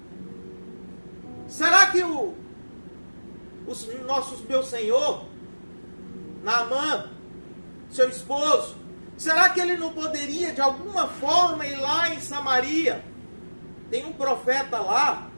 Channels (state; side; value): inverted; both; correlation -1.00